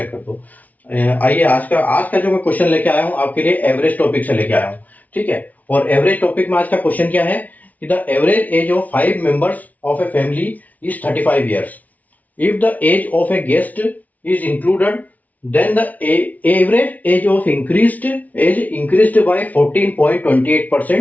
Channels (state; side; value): late; right; 0.074 ms